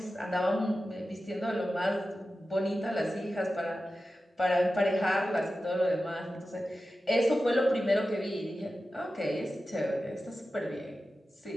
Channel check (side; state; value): both; normal; correlation 0.93